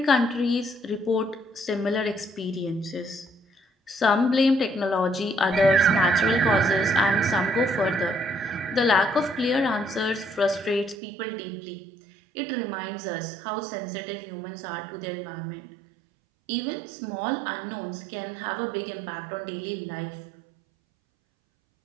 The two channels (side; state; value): left; drops out; at 11.0 s